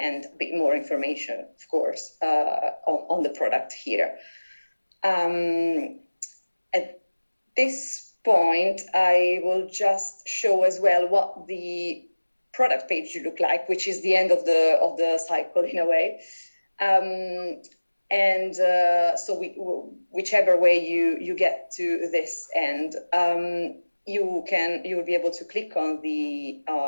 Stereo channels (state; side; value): inverted; both; correlation -1.00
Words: a bit more information, of course, on the product here. At this point, I will just show as well what the product page should look like, which is the end of the cycle in a way. So whichever way you get to this end, you will be able to click on the